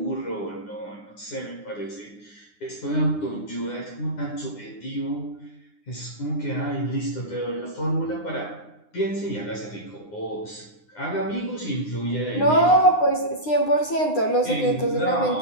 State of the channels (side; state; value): right; late; 9.8 ms